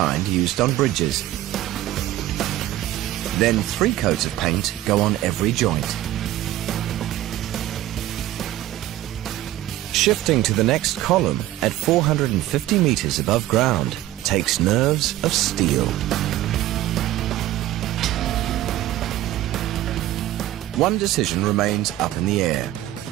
used on bridges. Then 3 coats of paint go on every joint. Shifting to the next column at 450 meters above ground takes nerves of steel. One decision remains up in the air:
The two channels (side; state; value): left; quieter; 14.3 dB